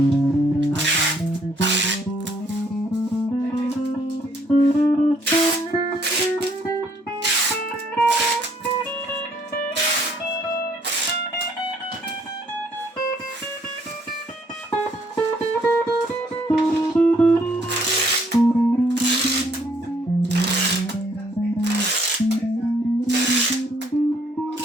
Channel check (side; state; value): both; normal; correlation 0.66